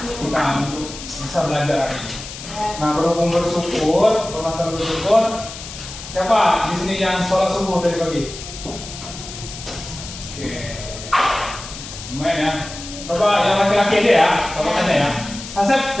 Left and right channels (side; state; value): left; noise; hiss, 12 dB below the sound